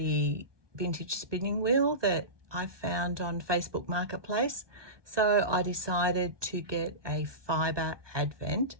vintage spinning wheel that I found on Facebook Marketplace. So I decided to get a fibre advent.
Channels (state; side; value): late; left; 1.2 ms